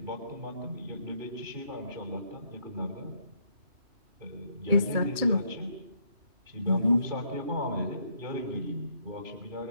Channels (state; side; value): late; left; 2.3 ms